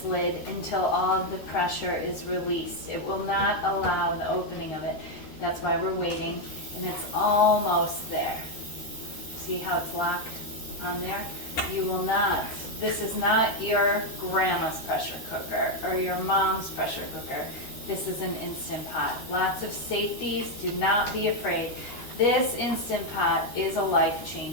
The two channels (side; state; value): right; late; 13 ms